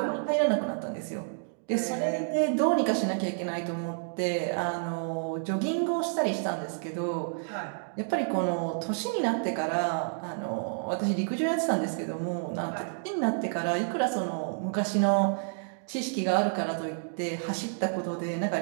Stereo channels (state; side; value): silent; left; digital silence